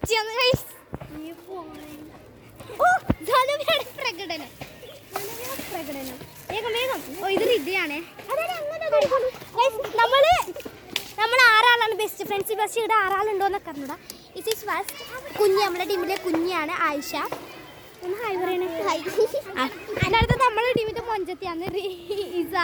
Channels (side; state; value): both; identical; correlation 1.00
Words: പ്രകടനം വേഗം വേഗം. ഓ ഇത് റിദ്യയാണേ. നമ്മൾ ആറാളാണ് ബെസ്റ്റ് ഫ്രണ്ട്സ്. ബസ് ഇവിടെ ആറാളുണ്ടോന്നൊക്കെ അറിഞ്ഞൂടാ. ഇറ്റ് ഈസ് ഫസ്റ്റ് കുഞ്ഞ്, നമ്മുടെ ടീമിലെ കുഞ്ഞാണ് ആയിഷ. ഒന്ന് ഹായ് പറയണേ. അടുത്തത് നമ്മുടെ ടീമിന്റെ മൊഞ്ചത്തിയാണ് ഇസ.